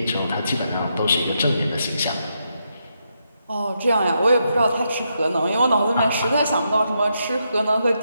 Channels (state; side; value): inverted; both; correlation -0.81